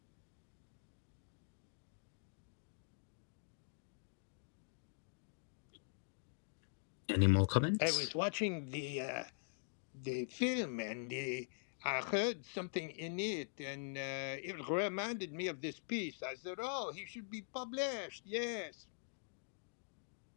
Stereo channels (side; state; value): right; silent; digital silence